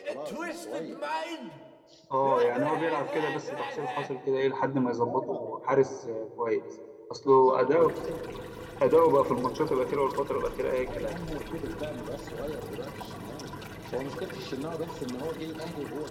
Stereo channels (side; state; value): both; identical; correlation 1.00